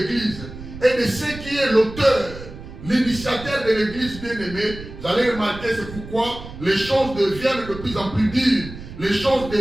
et de ce qui est l'auteur, l'initiateur de l'Église, bien-aimé, vous allez remarquer, c'est pourquoi les choses deviennent de plus en plus dures, les choses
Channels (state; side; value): noise; right; rumble, 13 dB below the sound